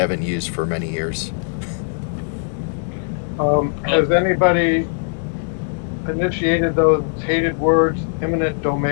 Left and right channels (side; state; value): right; silent; 66 dB below the other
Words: used for many years. Has anybody initiated those hated words, eminent